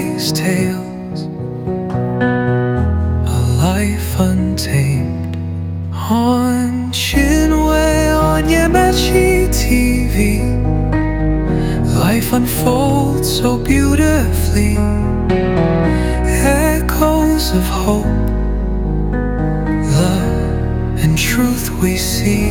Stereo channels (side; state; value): both; identical; correlation 1.00